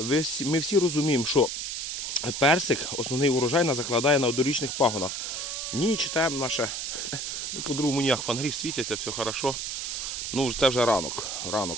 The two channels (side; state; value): right; noise; hiss, 4 dB below the sound